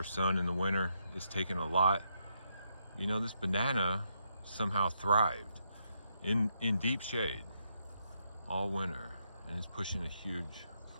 sun in the winter. It's taken a lot. You know, this banana somehow thrived in deep shade all winter, and it's pushing a huge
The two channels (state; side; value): inverted; both; correlation -0.78